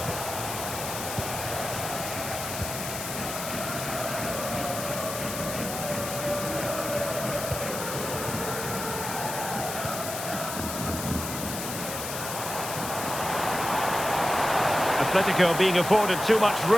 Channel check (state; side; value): noise; left; hiss, 6 dB below the sound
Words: Atletico being afforded too much